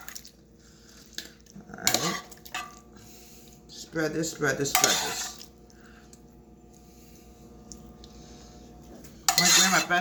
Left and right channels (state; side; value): identical; both; correlation 1.00